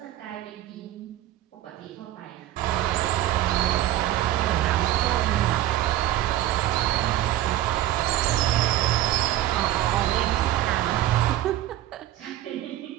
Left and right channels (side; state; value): left; quieter; 13.8 dB